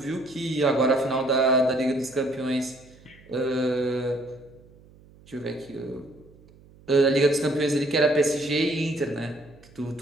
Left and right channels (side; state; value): right; noise; hum, 25 dB below the sound